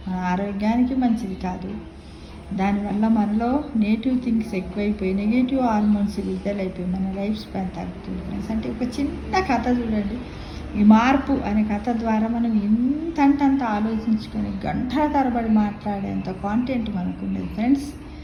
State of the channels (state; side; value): identical; both; correlation 1.00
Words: మన ఆరోగ్యానికి మంచిది కాదు. దానివల్ల మనలో నెగిటివ్ థింగ్స్ ఎక్కువైపోయి నెగిటివ్ హార్మోన్స్ విడుదలైపోయి మన లైఫ్ స్పాన్ తగ్గుతుంది ఫ్రెండ్స్. అంటే ఒక చిన్న కథ చూడండి, ఈ మార్పు అనే కథ ద్వారా మనం ఎంతంత ఆలోచించుకొని గంటల తరబడి మాట్లాడేంత కాంటెంట్ మనకు ఉండేది ఫ్రెండ్స్.